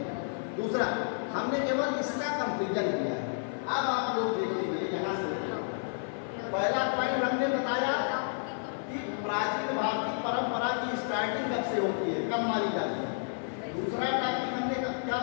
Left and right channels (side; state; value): right; silent; 57 dB below the other